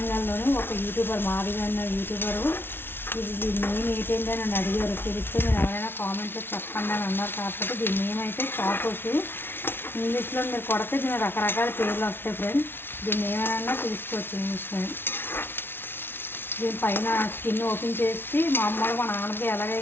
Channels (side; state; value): right; late; 0.11 ms